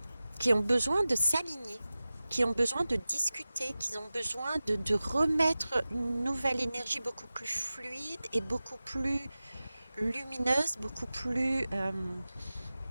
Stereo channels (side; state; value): both; inverted; correlation -0.96